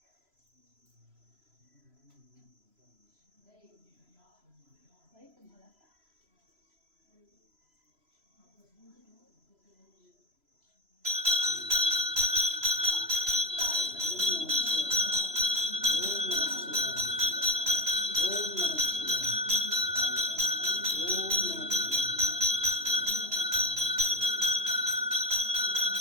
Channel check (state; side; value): late; left; 3.0 ms